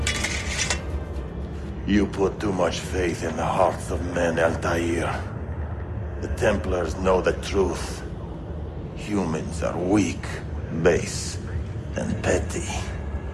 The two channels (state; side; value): identical; both; correlation 1.00